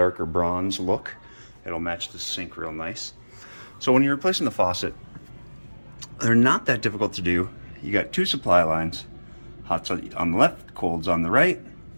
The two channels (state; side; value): inverted; both; correlation -1.00